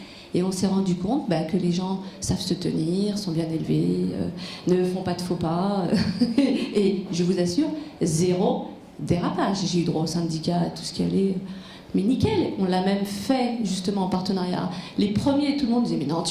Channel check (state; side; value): identical; both; correlation 1.00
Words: et on s'est rendu compte que les gens savent se tenir, sont bien élevés, ne font pas de faux pas, et je vous assure, 0 dérapage. J'ai eu droit au syndicat, à tout ce qui allait, mais nickel. On l'a même fait justement en partenariat. Les premiers, tout le monde disait « mais non,